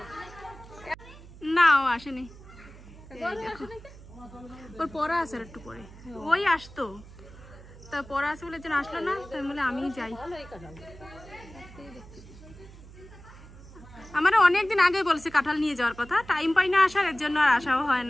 না ও আসেনি, ওর পড়া আছে আর একটু পরে, ওই আসতো, তা পড়া আছে বলে যেন আসলো না, তাই বলে আমি যাই। আমার অনেকদিন আগে বলছে কাঁঠাল নিয়ে যাওয়ার কথা, টাইম পাই না আসার, এর জন্য আর আসাও হয়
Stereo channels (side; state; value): right; noise; hum, 18 dB below the sound